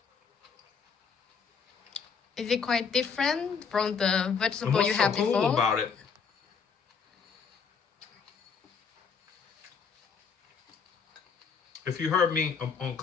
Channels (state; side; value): quieter; right; 6.0 dB